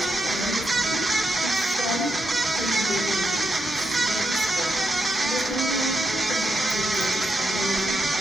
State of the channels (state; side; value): normal; both; correlation 0.84